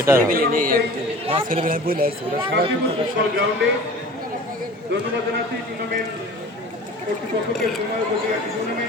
ফুটবল গ্রাউন্ডে। ধন্যবাদ জানাচ্ছি টুর্নামেন্ট কর্তৃপক্ষকে, সময় উপযোগী একটি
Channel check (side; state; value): both; normal; correlation 0.41